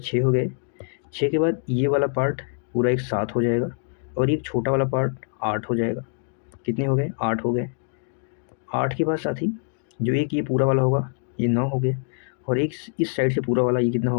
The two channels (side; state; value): right; silent; 62 dB below the other